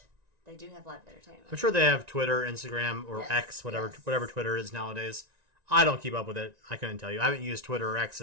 they do have live entertainment. I'm sure they have Twitter, Instagram, or X, whatever Twitter is nowadays. I don't keep up with it. I couldn't tell you. I haven't used Twitter or X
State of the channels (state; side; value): late; left; 1.9 ms